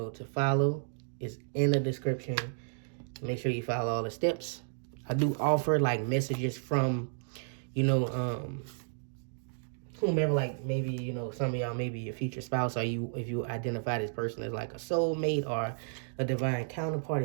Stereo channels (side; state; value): left; silent; digital silence